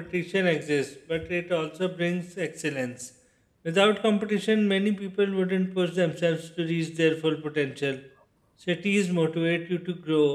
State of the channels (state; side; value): identical; both; correlation 1.00